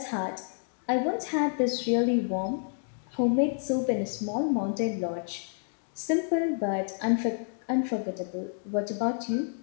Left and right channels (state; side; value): silent; right; digital silence